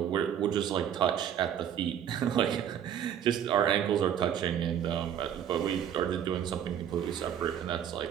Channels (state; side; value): quieter; left; 9.5 dB